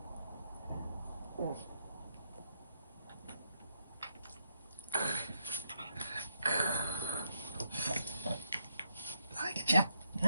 I get you.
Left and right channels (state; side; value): inverted; both; correlation -0.77